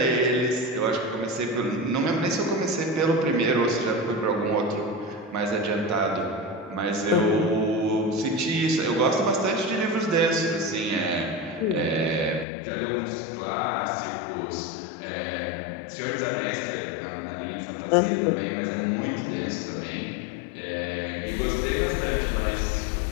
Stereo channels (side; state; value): right; drops out; at 12.5 s